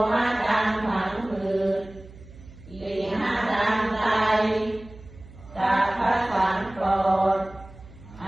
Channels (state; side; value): noise; right; hum, 20 dB below the sound